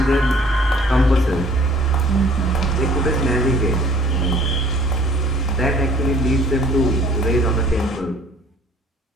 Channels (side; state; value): both; normal; correlation 0.55